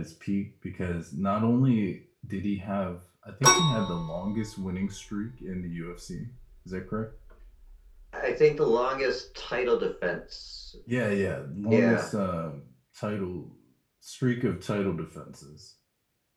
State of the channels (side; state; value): both; identical; correlation 1.00